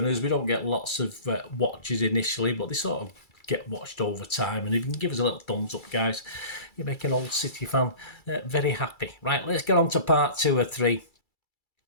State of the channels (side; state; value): right; late; 2.3 ms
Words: We don't get lots of watches initially, but they sort of get watched over time. And if you can give us a little thumbs up, guys, you make an old City fan very happy. Right, let's get on to part two or three.